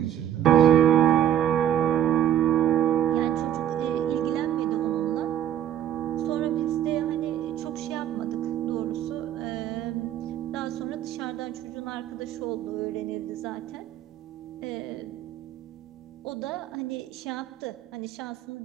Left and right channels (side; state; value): left; quieter; 10.9 dB